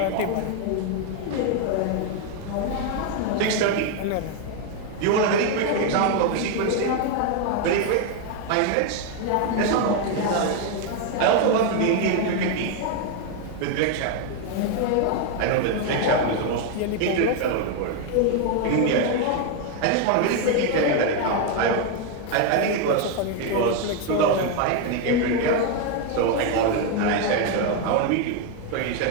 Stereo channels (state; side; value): different; both; correlation 0.01